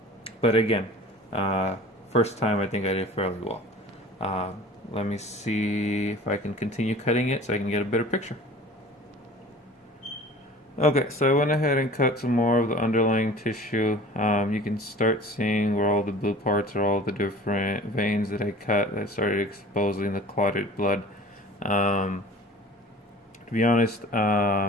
again, first time I think I did fairly well. Let me see if I can continue cutting it so I can get a better picture. Okay, so I went ahead and cut some more of the underlying tissue. You can start seeing where all the blue parts are, all the different veins that I cut that started exposing the clotted blood. To be honest,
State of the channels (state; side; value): normal; both; correlation 0.43